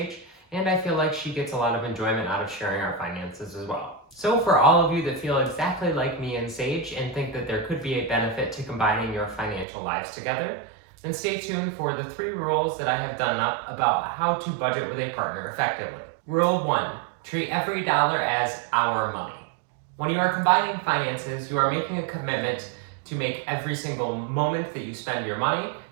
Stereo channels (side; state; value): left; drops out; at 9.7 s